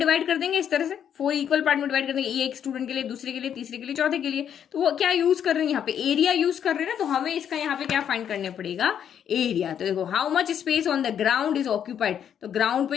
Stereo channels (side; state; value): right; quieter; 8.9 dB